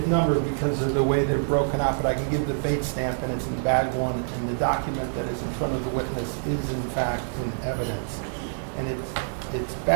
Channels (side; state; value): left; silent; digital silence